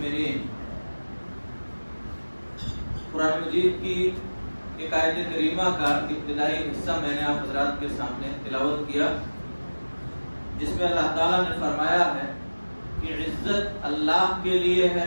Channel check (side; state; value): both; inverted; correlation -1.00